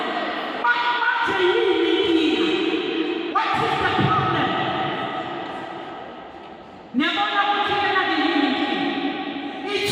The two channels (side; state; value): both; identical; correlation 1.00